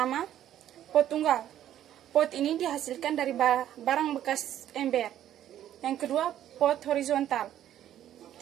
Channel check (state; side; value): quieter; left; 11.5 dB